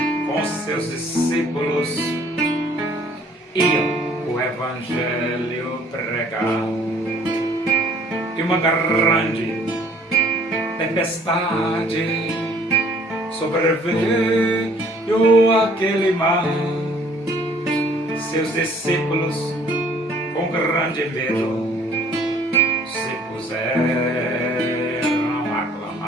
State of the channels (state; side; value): normal; both; correlation 0.57